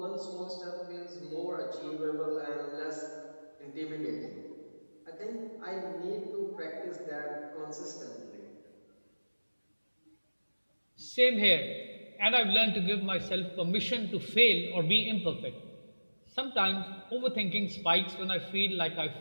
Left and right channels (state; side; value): inverted; both; correlation -1.00